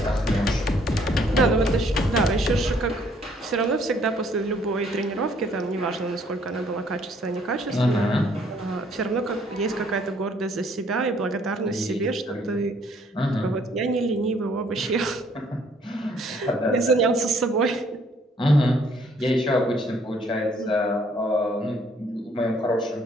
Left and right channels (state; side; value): normal; both; correlation 0.63